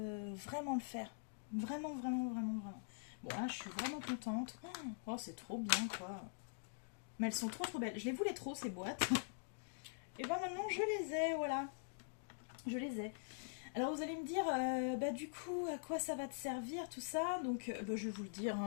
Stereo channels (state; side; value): silent; right; digital silence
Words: vraiment le faire. Vraiment, vraiment, vraiment, vraiment. Bon, là, je suis vraiment contente. Oh, c'est trop bien, quoi. Mais elles sont trop, trop belles. Je les voulais trop, ces boîtes. Et ben maintenant, je les ai, voilà. Je les ai. Alors, vous allez me dire, bah du coup, à quoi ça va te servir, tout ça? Donc, bah, je vais vous le dire,